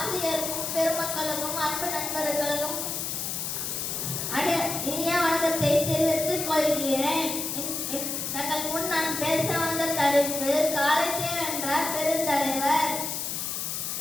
பெருமக்களுக்கும் அன்பு நண்பர்களுக்கும் இனிய வணக்கத்தை தெரிவித்துக் கொள்கிறேன். தங்கள் முன் நான் பேச வந்த தலைப்பு காலத்தை வென்ற பெருந்தலைவர்.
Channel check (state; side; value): noise; left; hiss, 3 dB below the sound